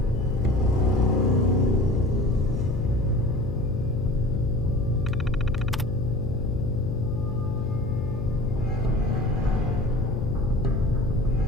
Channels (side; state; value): left; noise; hum, 5 dB below the sound